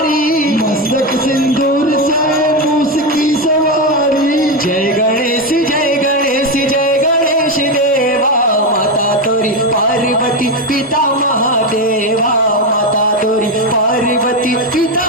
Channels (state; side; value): normal; both; correlation 0.11